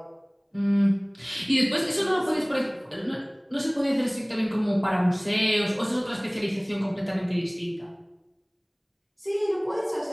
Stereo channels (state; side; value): identical; both; correlation 1.00